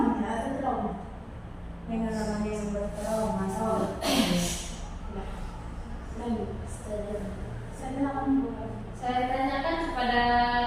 Pengalaman yang bertrauma Saya tanyakan kepada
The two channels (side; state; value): both; identical; correlation 1.00